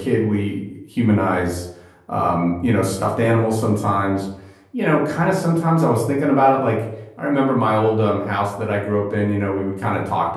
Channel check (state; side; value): identical; both; correlation 1.00